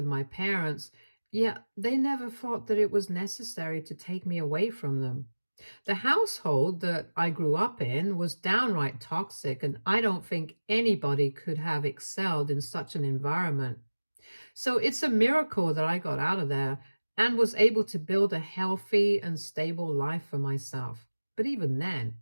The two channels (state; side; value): inverted; both; correlation -1.00